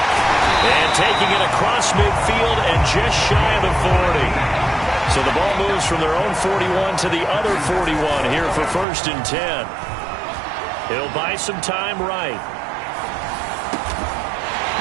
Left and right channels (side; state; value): left; drops out; at 8.8 s